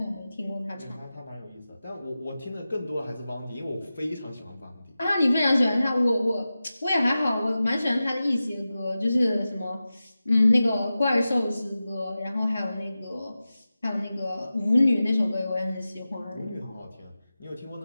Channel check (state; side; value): inverted; both; correlation -0.94